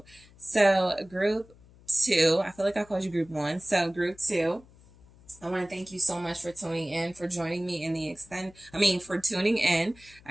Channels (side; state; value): left; noise; hum, 25 dB below the sound